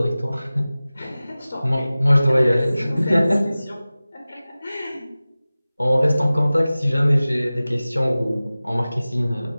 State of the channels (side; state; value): both; inverted; correlation -0.97